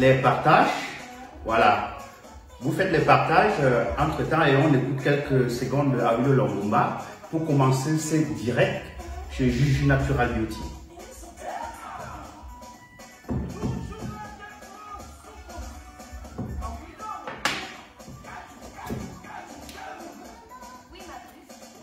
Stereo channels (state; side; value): identical; both; correlation 1.00